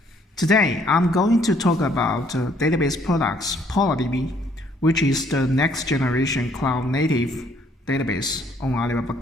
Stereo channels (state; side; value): normal; both; correlation 0.64